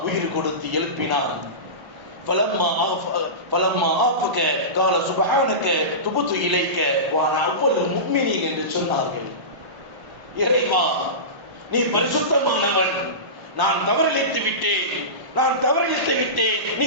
உயிர் கொடுத்து எழுப்பினான். ஃபலம்மா ஆஃபக கால சுப்ஹானக துபுது இலைக்க வஅனா அவ்வல் முஃமினீன் என்று சொன்னார்கள். இறைவா, நீ பரிசுத்தமானவன், நான் தவறிழைத்து விட்டேன், நீ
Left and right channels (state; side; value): late; left; 1.0 ms